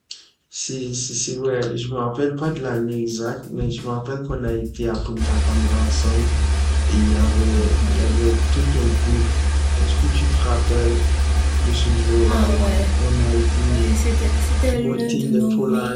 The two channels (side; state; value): both; identical; correlation 1.00